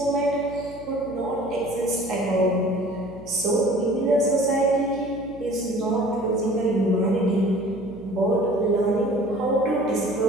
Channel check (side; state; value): right; noise; hum, 18 dB below the sound